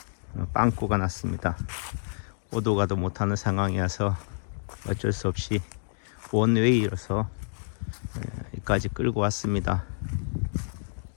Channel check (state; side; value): silent; right; digital silence